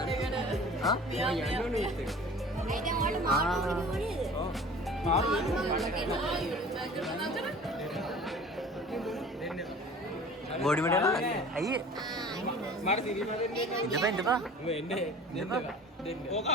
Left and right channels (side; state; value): both; normal; correlation 0.43